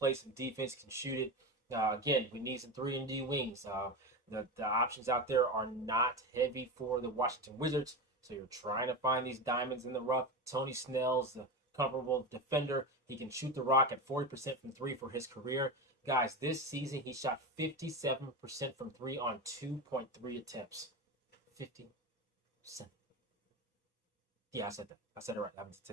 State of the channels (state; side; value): normal; both; correlation 0.20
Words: some defense, can shoot it. Again, we need some 3 and D wings. The options out there are not heavy for the Washington Wizards. So you're trying to find these diamonds in the rough. Tony Snell's a comparable defender. He can shoot the rock at 40% from 3 for his career. Guys, this season he shot 57% from 3 on 2.3 attempts. 57. Yeah, I said that. I said it right. I'm